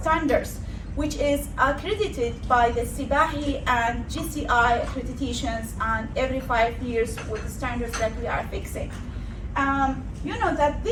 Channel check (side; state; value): both; identical; correlation 1.00